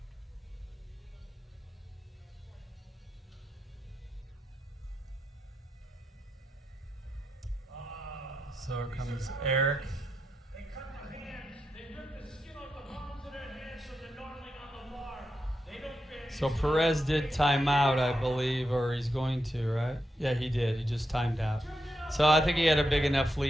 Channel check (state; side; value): normal; both; correlation 0.86